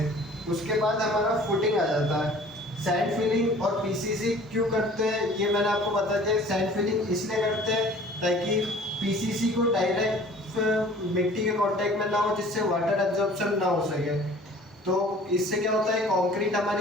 उसके बाद हमारा फुटिंग आ जाता है। सैंड फिलिंग और पीसीसी क्यों करते हैं ये मैंने आपको बता दिया। सैंड फिलिंग इसलिए करते हैं ताकि पीसीसी को डायरेक्ट मिट्टी के कांटेक्ट में ना हो, जिससे वाटर एब्जॉर्प्शन ना हो सके। तो इससे क्या होता है, कंक्रीट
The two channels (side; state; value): both; normal; correlation 0.48